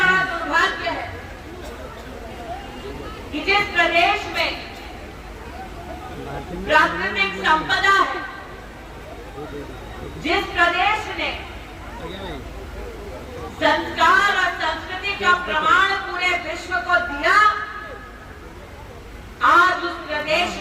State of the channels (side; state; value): both; identical; correlation 1.00